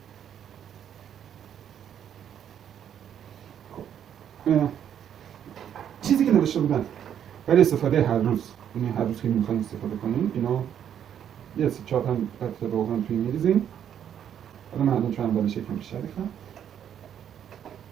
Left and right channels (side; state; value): left; quieter; 9.4 dB